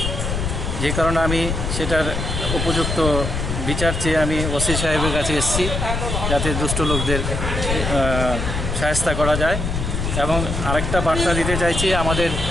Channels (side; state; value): left; noise; rumble, 2 dB below the sound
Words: যে কারণে আমি সেটার উপযুক্ত বিচার চেয়ে আমি ওসি সাহেবের কাছে এসেছি, যাতে দুষ্ট লোকদের সহায়তা করা যায়। এবং আরেকটা বার্তা দিতে চাইছি আমাদের